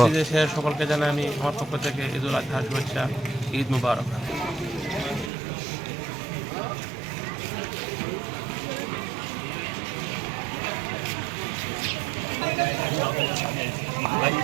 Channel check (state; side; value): drops out; left; at 5.3 s